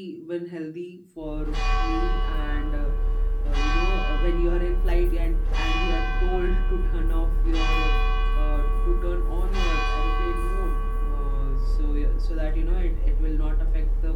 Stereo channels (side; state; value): both; identical; correlation 1.00